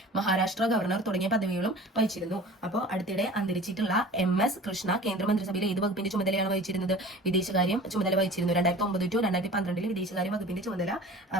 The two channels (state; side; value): normal; both; correlation 0.42